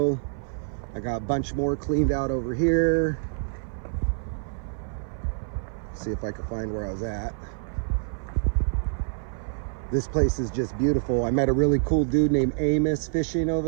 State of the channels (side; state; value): left; silent; 56 dB below the other